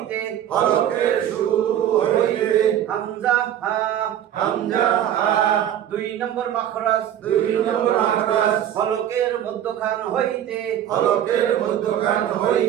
হলকের শুরু হইতে। হামজা হা। হামজা হা। 2 নম্বর মাখরাজ। 2 নম্বর মাখরাজ হলকের মধ্যখান হইতে। হলকের মধ্যখান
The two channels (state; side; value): quieter; left; 10.7 dB